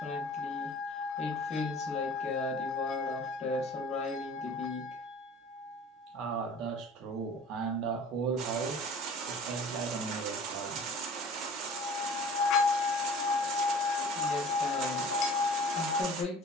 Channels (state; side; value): normal; both; correlation 0.45